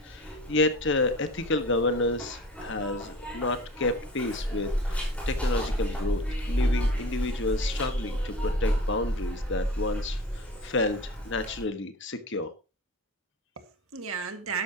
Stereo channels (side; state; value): both; normal; correlation 0.36